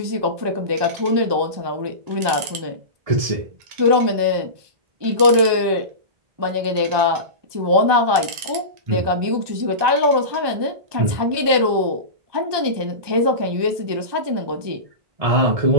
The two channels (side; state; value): left; late; 1.2 ms